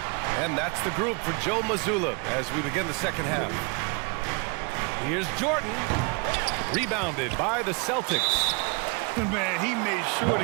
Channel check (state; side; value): quieter; left; 31.3 dB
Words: And that's the group for Joe Mazzulla as we begin the second half. Here's Jordan. Rebounded by the Celtics. Man, he made sure